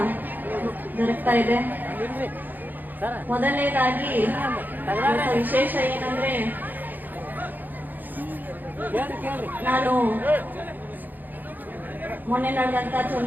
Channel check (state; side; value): late; left; 0.086 ms